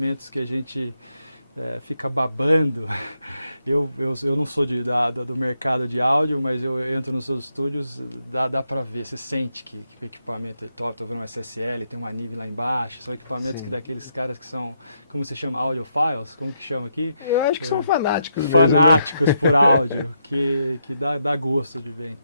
que a gente fica babando. Eu não sou do mercado de áudio, mas eu entro nos seus estúdios, dá para ver, você sente que o equipamento é top. Estou vendo um SSL, tem uma NIV lá embaixo, são equipamentos que daqueles caras que são, como se chama, audiophiles, como que chama aqui? Eu acho que são fanáticos. Fanáticos por áudio, que dá gosto de ver.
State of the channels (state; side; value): inverted; both; correlation -0.80